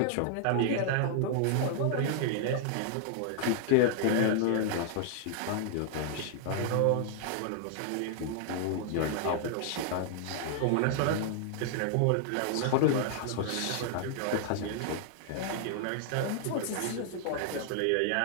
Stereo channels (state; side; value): different; both; correlation -0.01